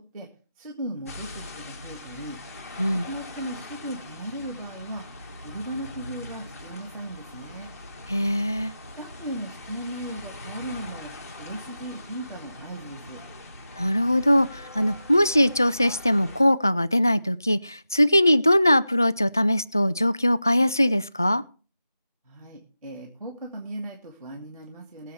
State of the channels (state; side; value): inverted; both; correlation -0.92